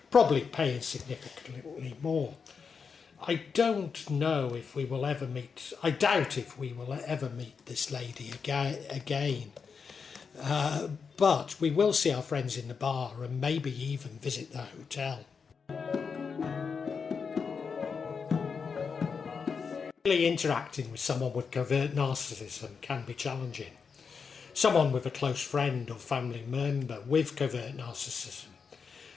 probably paying significantly more. I don't know if we will ever meet. I doubt if we will ever meet this lady again. But we will see our friends in the bar and maybe even visit the hotel. Really interacting with someone with covert narcissism can be challenging. Someone with a close friend or family member with covert narcissism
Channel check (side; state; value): right; quieter; 5.7 dB